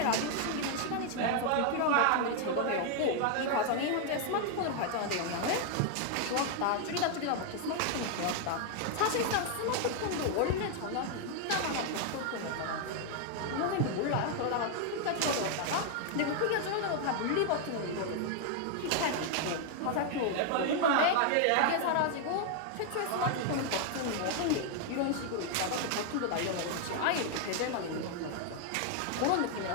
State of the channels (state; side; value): different; both; correlation 0.00